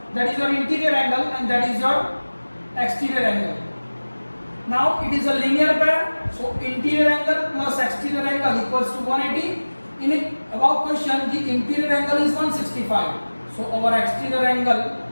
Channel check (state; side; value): inverted; both; correlation -1.00